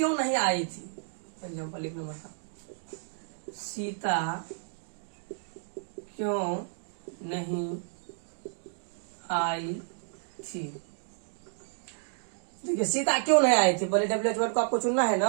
नहीं आई थी, एग्जाम्पल 1 नंबर का, सीता क्यों नहीं आई थी। देखिए सीता क्यों नहीं आई थी, पहले WH वर्ड को आपको चुनना है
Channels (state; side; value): silent; left; digital silence